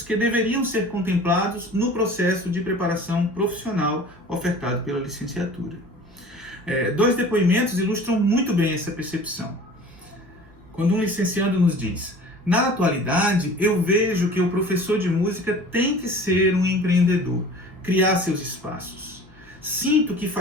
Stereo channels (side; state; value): both; normal; correlation 0.43